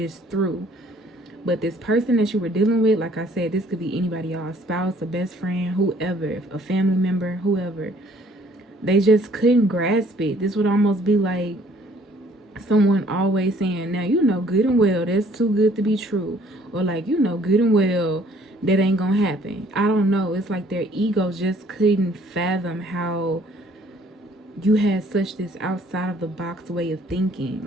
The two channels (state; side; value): normal; both; correlation 0.59